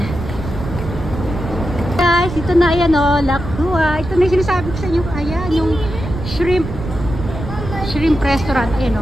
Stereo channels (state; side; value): noise; right; rumble, 8 dB below the sound